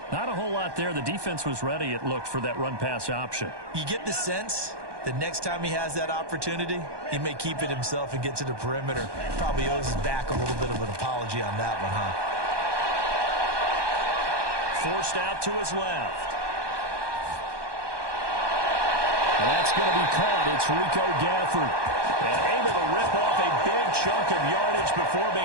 Not a whole lot there. The defense was ready, it looked, for that run-pass option. You get the sense that next time he has that opportunity, he may keep it himself and get to the perimeter. Probably owes his back a little bit of an apology on that one, huh? Forced out to his left. And that's going to be caught. It's Rico Gafford. And able to rip off a big chunk of yardage before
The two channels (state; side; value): late; left; 1.2 ms